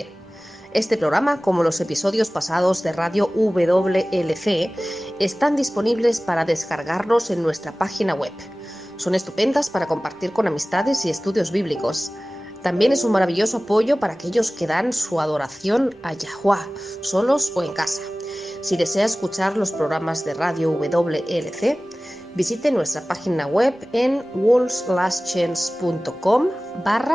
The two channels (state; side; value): normal; both; correlation 0.98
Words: Este programa, como los episodios pasados de Radio WLC, están disponibles para descargarlos en nuestra página web. Son estupendas para compartir con amistades y estudios bíblicos. También es un maravilloso apoyo para aquellos que dan su adoración a Yahuwah, solos o en casa. Si desea escuchar los programas de Radio WLC, visite nuestra página web en